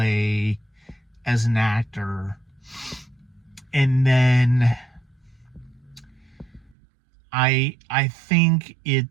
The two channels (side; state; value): left; drops out; at 6.8 s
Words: as an actor. And then I think